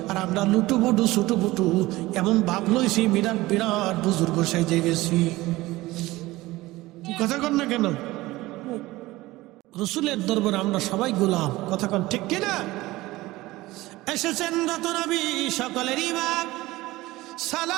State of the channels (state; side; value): quieter; left; 18.8 dB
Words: আর আমরা লুটুপুটু ছুটুপুটু এমন ভাব লইছি, বিরাট বিরাট বুজুর্গ সেজে গেছি। কথা কন না কেন? রাসূলের দরবারে আমরা সবাই গোলাম। কথা কন ঠিক কিনা? এসেছেন রত নবী, সকলের ইমাম।